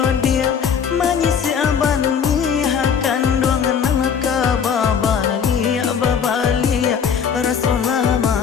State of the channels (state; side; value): quieter; right; 7.1 dB